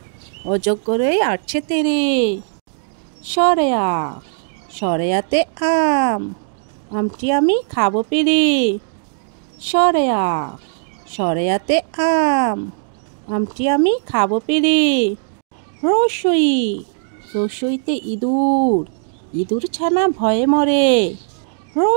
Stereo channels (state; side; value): silent; left; digital silence